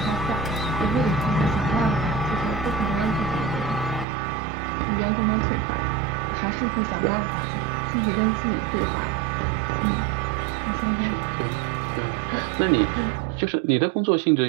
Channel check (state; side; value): drops out; left; at 4.0 s